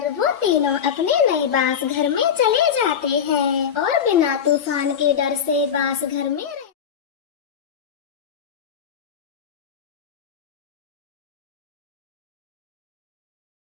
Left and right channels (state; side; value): quieter; right; 7.9 dB